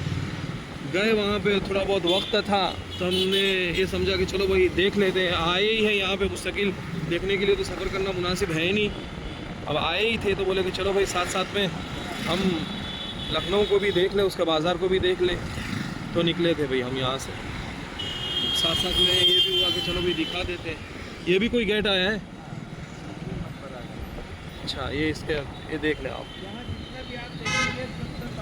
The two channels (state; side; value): identical; both; correlation 1.00